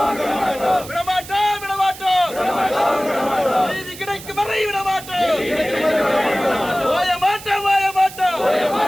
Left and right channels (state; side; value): noise; right; hiss, 15 dB below the sound